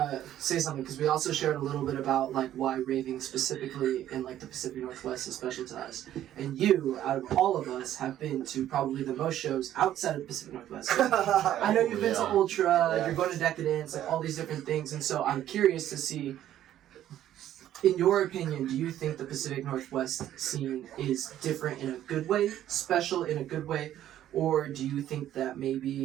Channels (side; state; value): left; quieter; 12.0 dB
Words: say something because we also shared a little bit about like why raving specifically in like the Pacific Northwest is special to us. And you, out of all of us, have been to probably the most shows outside of the Pacific Northwest. I know you've been to Ultra, you're going to Decadence, like all these different things. And so I'm curious to see, in your opinion, do you think the Pacific Northwest scene is different in a good way, special in a good way, or do you think that